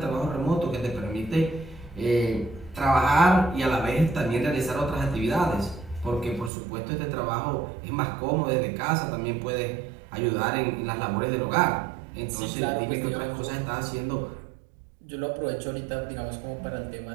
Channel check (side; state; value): left; drops out; at 6.5 s